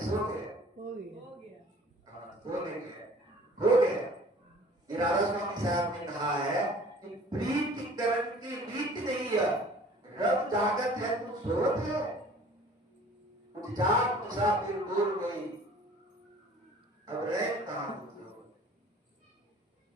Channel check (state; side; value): normal; both; correlation 0.49